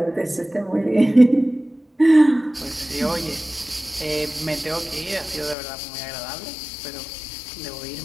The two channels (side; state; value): right; drops out; at 5.6 s